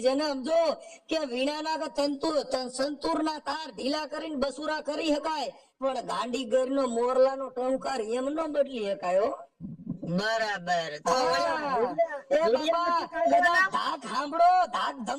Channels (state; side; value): identical; both; correlation 1.00